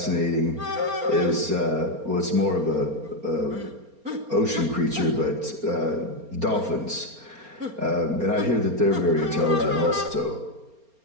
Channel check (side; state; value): left; late; 4.3 ms